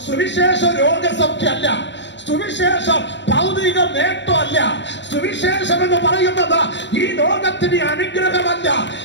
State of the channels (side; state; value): right; late; 0.52 ms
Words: സുവിശേഷം രോഗസൗഖ്യമല്ല, സുവിശേഷം ഭൗതിക നേട്ടമല്ല. സുവിശേഷം എന്ന് പറയുന്നത് ഈ ലോകത്തിന് അനുഗ്രഹമല്ല,